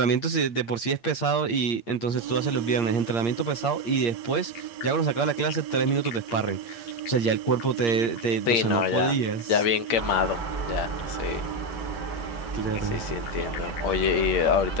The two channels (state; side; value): late; right; 8.6 ms